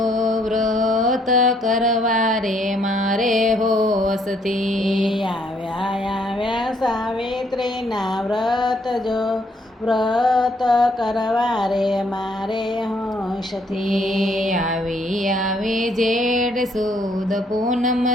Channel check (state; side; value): normal; both; correlation 0.68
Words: વ્રત કરવા રે મારે હોશથી. આવ્યા સાવિત્રીના વ્રત જો, વ્રત કરવા રે મારે હોશથી. આવી જેઠ સુદ પૂનમ